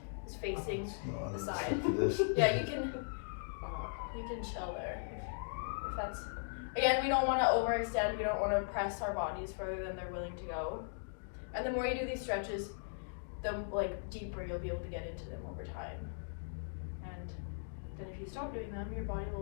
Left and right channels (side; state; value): right; silent; digital silence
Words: is facing the side. This. Yeah, you can chill there if that's, again, we don't want to overextend, we don't want to press our bodies further than they're willing to go. And the more you do these stretches, the like deeper you'll be able to get into them over time. And then if you stop doing them, your body